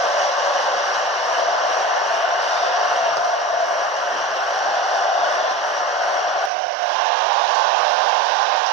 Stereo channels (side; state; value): left; drops out; at 6.5 s